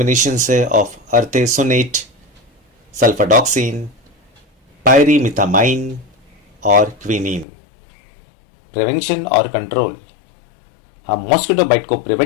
है ऑफ अर्थेसोनेट, सल्फाडॉक्सिन, पायरीमिथामाइन और क्विनीन। प्रिवेंशन और कंट्रोल, हम मॉस्किटो बाइट को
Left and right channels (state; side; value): drops out; right; at 7.5 s